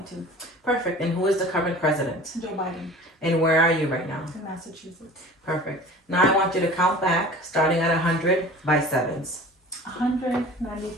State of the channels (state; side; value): normal; both; correlation 0.42